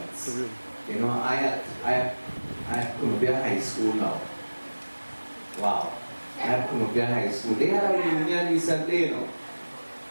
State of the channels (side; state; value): both; inverted; correlation -1.00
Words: You know, I had Columbia High School now. Wow. I had Columbia High School. They had a reunion recently, you know.